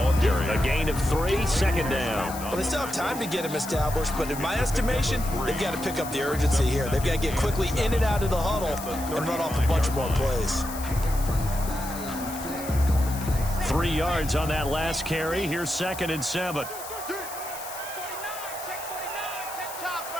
A gain of 3, 2nd down. Well, they still have time to get him established, but in my estimation, they've got to pick up the urgency here. They've got to get quickly in and out of the huddle and run off a bunch more plays. 3 yards on that last carry. Here's 2nd and 7.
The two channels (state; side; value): noise; left; hiss, 12 dB below the sound